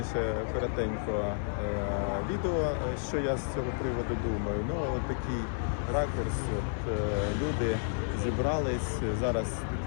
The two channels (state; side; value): silent; right; digital silence